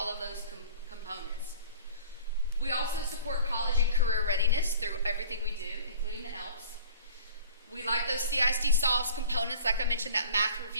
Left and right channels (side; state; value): both; inverted; correlation -0.45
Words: of those components. We also support college and career readiness through everything we do, including the ELPS. We like those CISD solves components, like I mentioned, that math